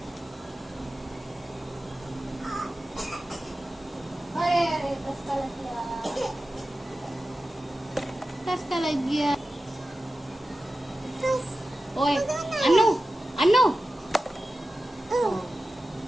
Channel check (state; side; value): normal; both; correlation 0.94